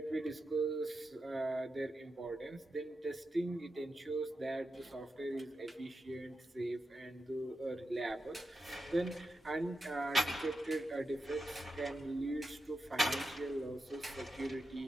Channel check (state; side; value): normal; both; correlation 0.88